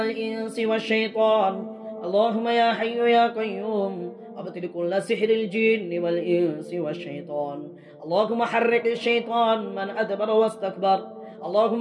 والشيطان. اللهم يا حي يا قيوم، أبطل كل سحر الجن والإنس والشيطان. اللهم حرك الشيطان من أدبر واستكبر.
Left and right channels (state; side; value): identical; both; correlation 1.00